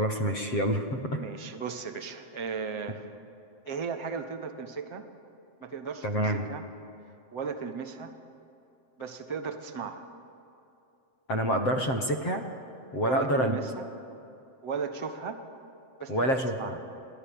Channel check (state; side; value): late; right; 7.7 ms